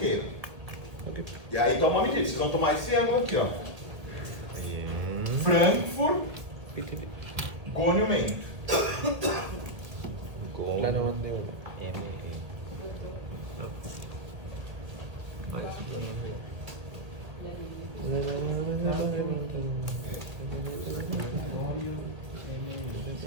E aí toma uma medida. Vocês vão tomar esse ângulo aqui, ó. Frankfurt, gonimento. Plano mandíbula. Ah, esse plano mandíbula.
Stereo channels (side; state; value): left; late; 1.8 ms